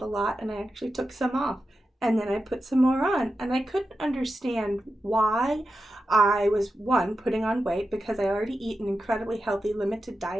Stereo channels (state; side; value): normal; both; correlation 0.90